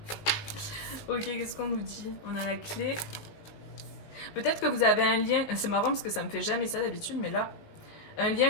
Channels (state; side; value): late; right; 19 ms